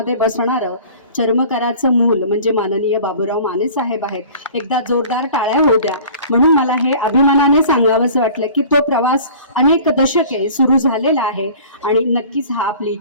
बसणारं चर्मकाराचं मूल म्हणजे माननीय बाबूराव माने साहेब आहेत. एकदा जोरदार टाळ्या होऊ द्या. म्हणून मला हे अभिमानाने सांगावंसं वाटलं की तो प्रवास अनेक दशके सुरू झालेला आहे आणि नक्कीच हा आपली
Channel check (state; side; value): inverted; both; correlation -0.45